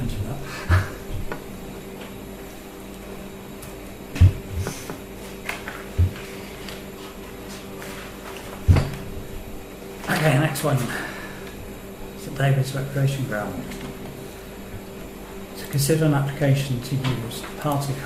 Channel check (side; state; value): both; identical; correlation 1.00